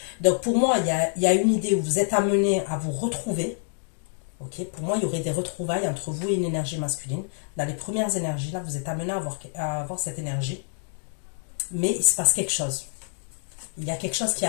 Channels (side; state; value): right; silent; 61 dB below the other